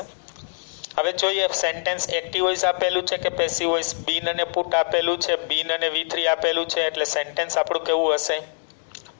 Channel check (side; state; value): right; silent; digital silence